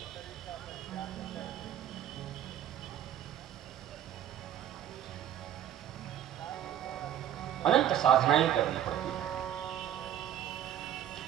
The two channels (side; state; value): left; quieter; 10.9 dB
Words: अनंत साधनाएं करनी पड़ती है।